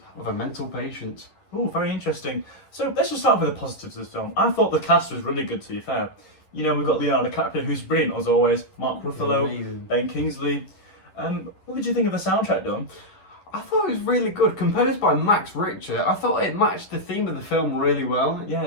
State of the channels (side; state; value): right; late; 11 ms